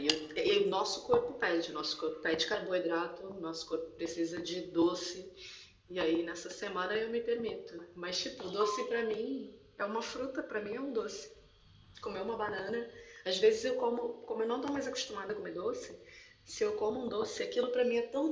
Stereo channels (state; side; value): identical; both; correlation 1.00